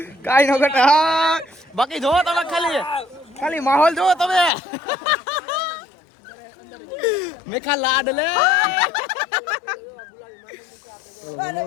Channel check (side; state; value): right; drops out; at 4.5 s